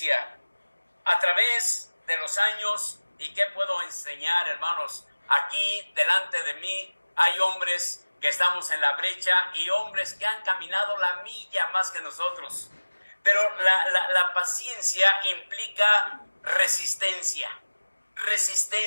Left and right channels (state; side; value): inverted; both; correlation -1.00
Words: a través de los años. ¿Y qué puedo enseñar, hermanos? Aquí delante de mí hay hombres que estamos en la brecha y hombres que han caminado la milla más que nosotros. Pero la paciencia implica resistencia,